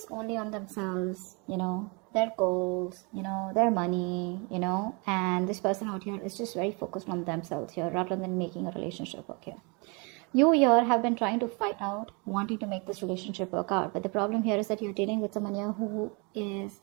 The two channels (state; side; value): quieter; left; 31.3 dB